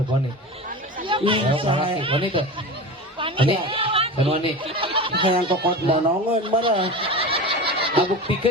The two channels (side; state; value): both; normal; correlation 0.29